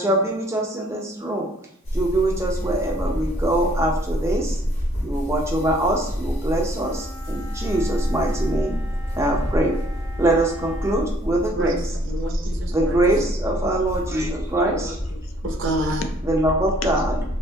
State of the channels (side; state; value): both; normal; correlation 0.62